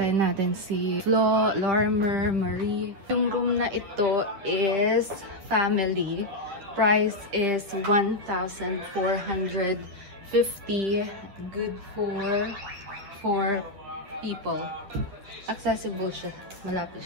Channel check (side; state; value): left; late; 9.8 ms